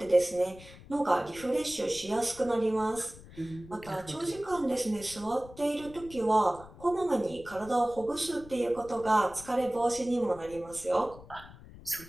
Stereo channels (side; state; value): left; noise; rumble, 19 dB below the sound